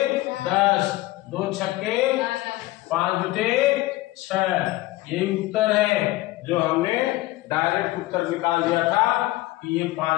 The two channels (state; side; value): quieter; right; 18.3 dB